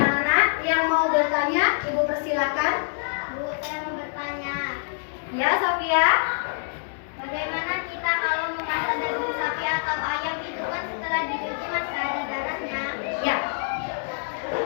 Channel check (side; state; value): right; silent; 61 dB below the other